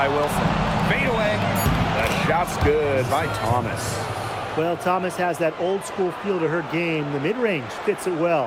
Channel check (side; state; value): both; identical; correlation 1.00